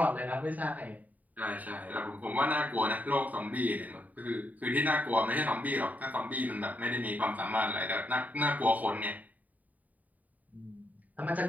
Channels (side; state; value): left; late; 0.075 ms